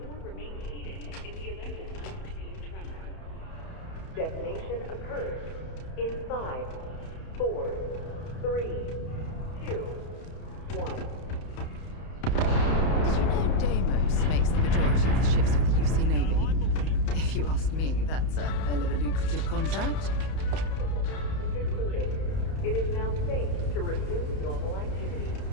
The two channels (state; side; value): late; right; 31 ms